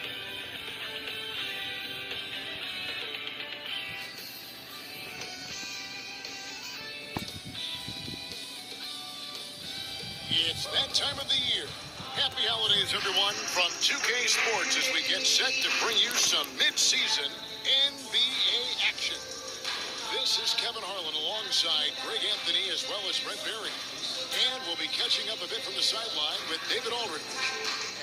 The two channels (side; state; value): both; identical; correlation 1.00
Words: It's that time of the year. Happy holidays, everyone, from 2K Sports as we get set to bring you some mid-season NBA action. This is Kevin Harlan alongside Greg Anthony as well as Brent Berry. And we'll be catching up a bit from the sideline with David Aldridge.